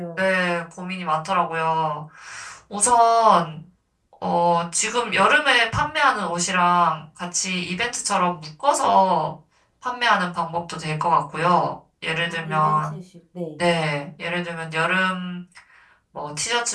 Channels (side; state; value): both; identical; correlation 1.00